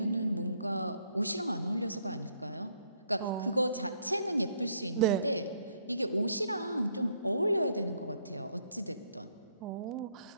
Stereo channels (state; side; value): inverted; both; correlation -0.68